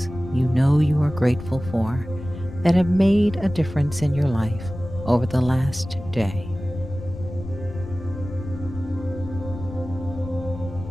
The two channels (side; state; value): left; noise; rumble, 11 dB below the sound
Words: you know you are grateful for that have made a difference in your life over the last day.